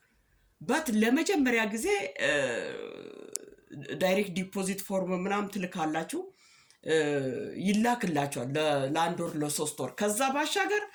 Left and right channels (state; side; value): identical; both; correlation 1.00